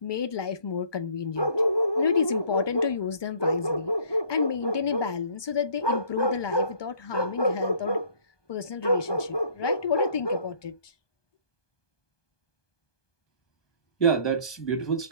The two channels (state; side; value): late; right; 1.2 ms